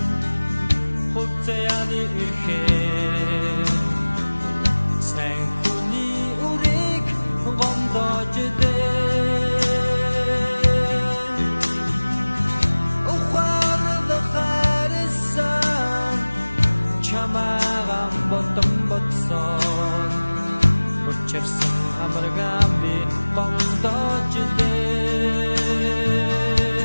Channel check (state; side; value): inverted; both; correlation -1.00